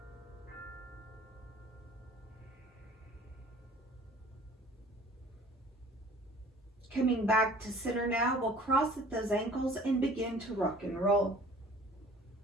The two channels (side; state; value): both; normal; correlation 0.49